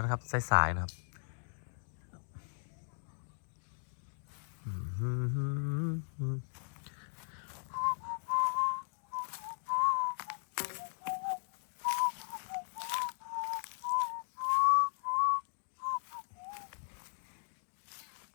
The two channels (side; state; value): right; silent; digital silence